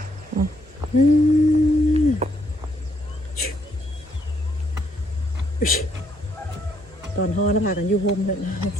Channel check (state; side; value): normal; both; correlation 0.71